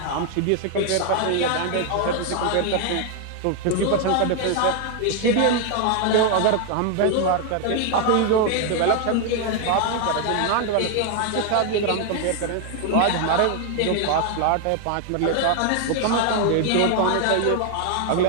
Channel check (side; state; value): both; different; correlation 0.00